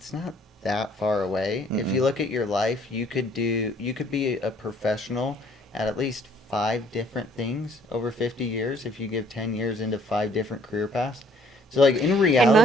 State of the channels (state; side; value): normal; both; correlation 0.60